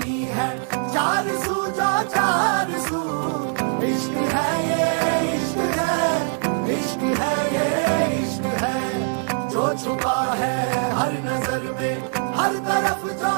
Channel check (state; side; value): silent; left; 63 dB below the other